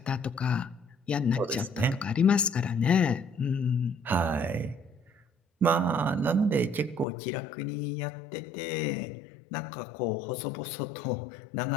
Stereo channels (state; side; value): drops out; right; at 7.1 s